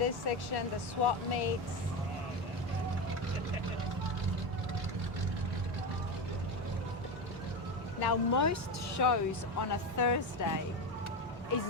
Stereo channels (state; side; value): normal; both; correlation 0.17